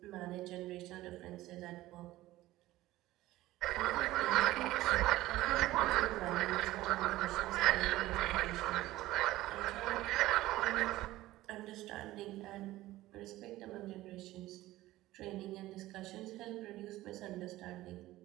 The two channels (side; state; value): left; quieter; 16.6 dB